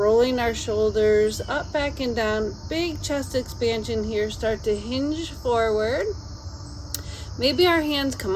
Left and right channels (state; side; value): identical; both; correlation 1.00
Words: our shoulders up, back, and down. Big chest expansion here. Start to hinge forward. Maybe our hands